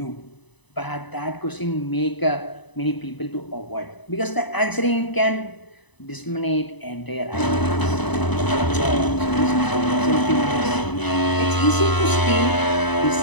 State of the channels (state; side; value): late; right; 1.0 ms